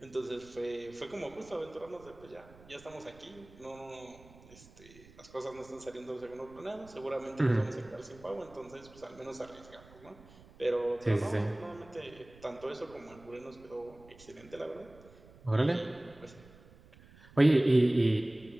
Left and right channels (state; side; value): noise; right; rumble, 22 dB below the sound